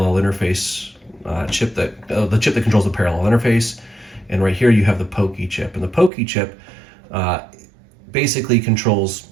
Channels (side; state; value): left; drops out; at 6.1 s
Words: interface chip the chip that controls the parallel interface. And right here you have the POKI chip. And the POKI chip basically controls